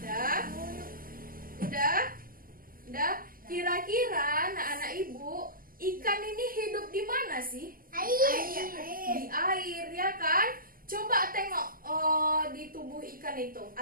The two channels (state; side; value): late; left; 0.42 ms